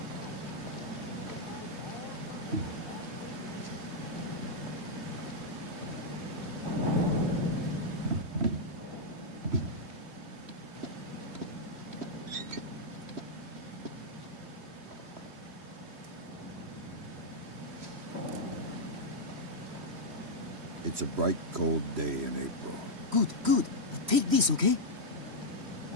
It's a bright, cold day in April. Good, good. Take this, okay?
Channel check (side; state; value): left; late; 3.1 ms